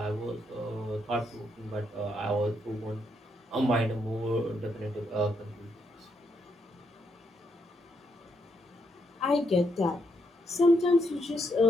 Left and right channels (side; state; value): both; normal; correlation 0.77